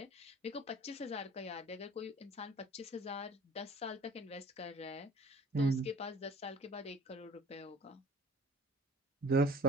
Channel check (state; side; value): normal; both; correlation 0.48